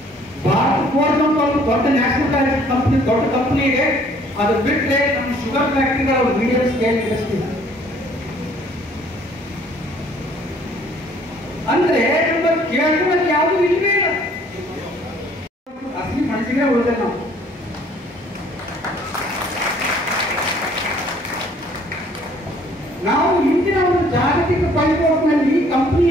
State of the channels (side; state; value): both; normal; correlation 0.59